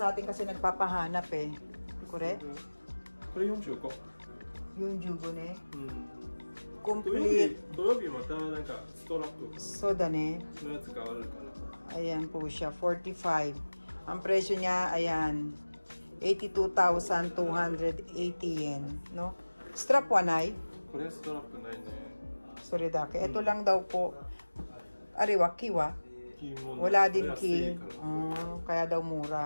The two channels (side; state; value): both; inverted; correlation -1.00